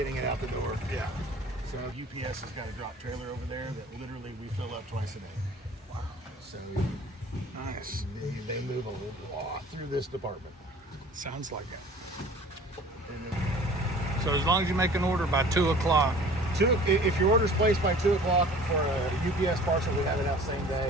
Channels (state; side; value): normal; both; correlation 0.47